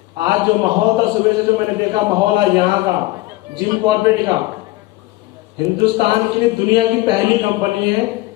आज जो माहौल था सुबह से, जो मैंने देखा माहौल आज यहाँ का जिम कॉर्पोरेट का, हिंदुस्तान की दुनिया की पहली कंपनी है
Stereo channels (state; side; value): quieter; right; 18.8 dB